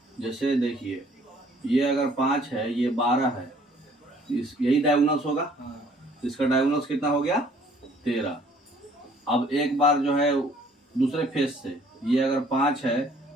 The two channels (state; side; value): normal; both; correlation 0.58